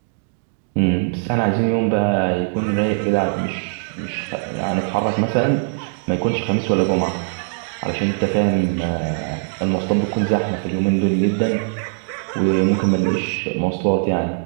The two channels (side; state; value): left; silent; digital silence